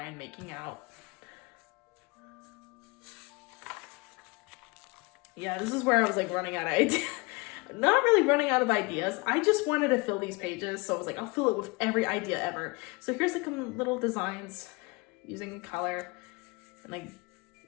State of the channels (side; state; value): right; quieter; 26.9 dB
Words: making out. Yeah, this is where I was like running out of ideas. Not really running out of ideas. I just wanted to fill these pages, so I was like, I'll fill it with every idea ever. So here's like some little designs using color, and like,